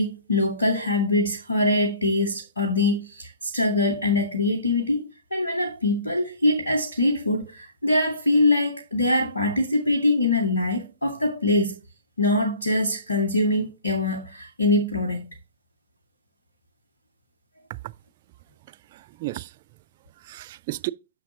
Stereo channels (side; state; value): both; inverted; correlation -0.50